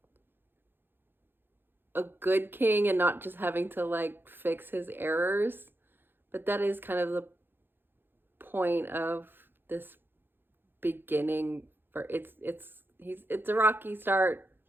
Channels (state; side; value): late; left; 0.10 ms